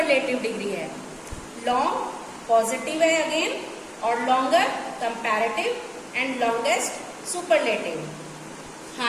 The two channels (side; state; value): both; identical; correlation 1.00